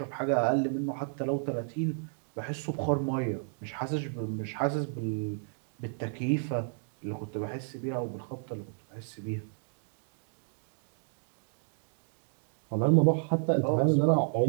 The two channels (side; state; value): left; silent; digital silence